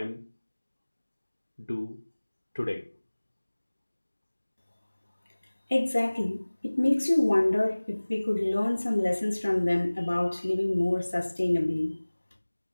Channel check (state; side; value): inverted; both; correlation -1.00